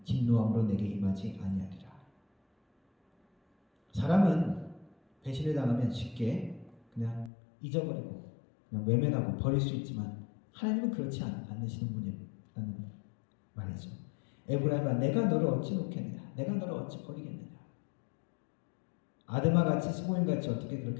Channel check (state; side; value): drops out; right; at 7.3 s